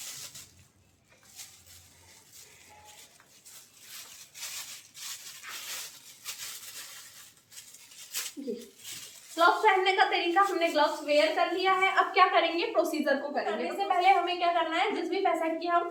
ग्लव्स पहनने का तरीका हमने ग्लव्स वेयर कर लिया है। अब क्या करेंगे, प्रोसीजर को करेंगे। इससे पहले हमें क्या करना है, जिस भी पेशेंट की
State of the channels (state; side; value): identical; both; correlation 1.00